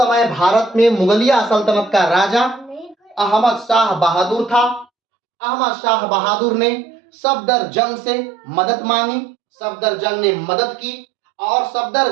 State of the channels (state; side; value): drops out; left; at 4.9 s